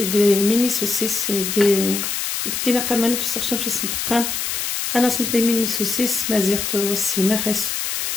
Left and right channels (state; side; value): noise; left; hiss, 2 dB below the sound